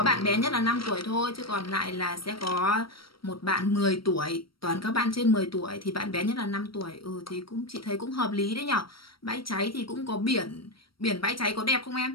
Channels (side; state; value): right; late; 0.74 ms